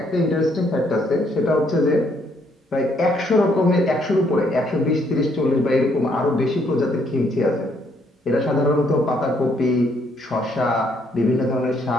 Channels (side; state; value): both; normal; correlation 0.70